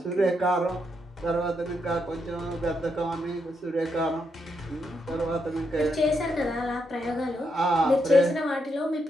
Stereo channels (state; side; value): normal; both; correlation 0.80